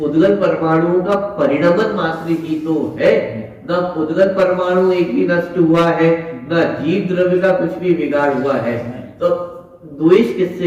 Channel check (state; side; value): identical; both; correlation 1.00